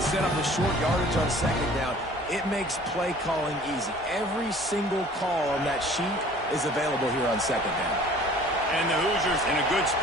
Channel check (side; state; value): both; normal; correlation 0.50